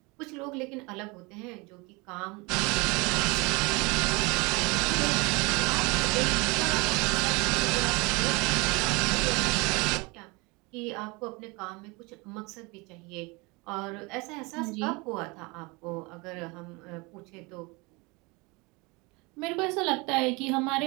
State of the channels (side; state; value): left; quieter; 26.6 dB